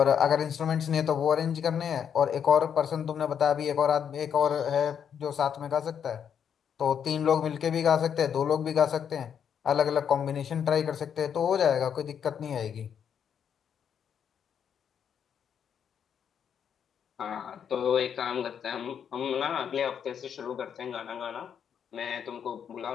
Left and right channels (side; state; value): right; quieter; 8.0 dB